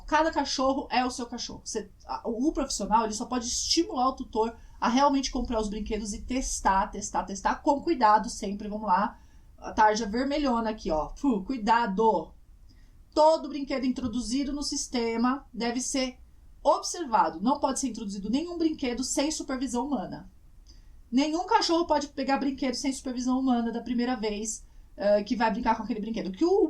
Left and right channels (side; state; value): both; identical; correlation 1.00